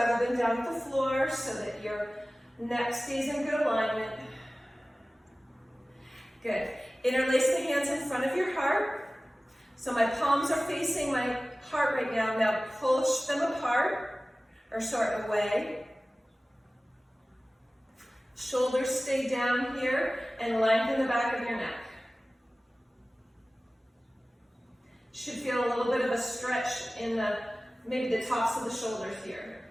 than down at the floor so that your neck stays in good alignment. Good. Interlace the hands in front of your heart. So my palms are facing my heart right now. Now push them apart, or sorry, away. Shoulders stay down here and lengthen the back of your neck. Should feel a little bit of a stretch in maybe the tops of the shoulders here.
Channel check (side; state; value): both; normal; correlation 0.97